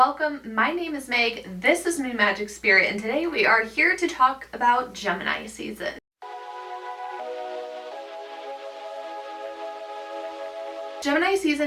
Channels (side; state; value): both; identical; correlation 1.00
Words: My name is Meg, this is my Magic Spirit, and today we are here to talk about Gemini season. Gemini